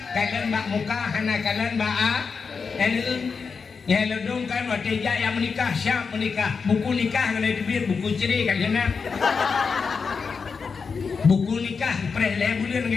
kalian bak muka hana kalian bak ya ledung kan waktu yang menikah siap menikah buku nikah kalau dibir buku cerai kalian buku nikah preh lebulan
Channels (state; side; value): quieter; right; 5.3 dB